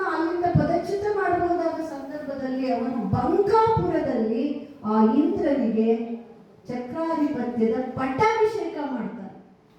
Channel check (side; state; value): both; identical; correlation 1.00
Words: ಅಲ್ಲಿಂದ ಪದಚ್ಯುತ ಮಾಡಬಹುದಾದ ಸಂದರ್ಭದಲ್ಲಿ ಅವನು ಬಂಕಾಪುರದಲ್ಲಿ ಆ ಇಂದ್ರನಿಗೆ ಚಕ್ರಾಧಿಪತ್ಯದ ಪಟ್ಟಾಭಿಷೇಕ ಮಾಡ್ತಾನೆ.